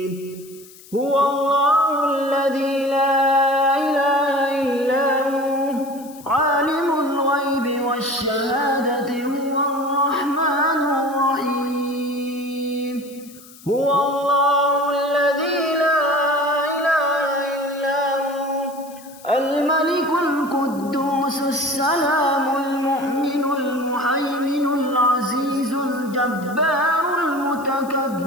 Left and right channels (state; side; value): noise; left; hiss, 21 dB below the sound